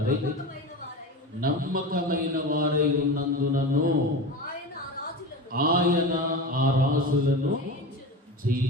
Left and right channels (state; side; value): normal; both; correlation 0.27